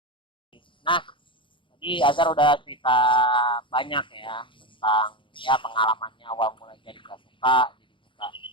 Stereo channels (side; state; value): right; late; 0.24 ms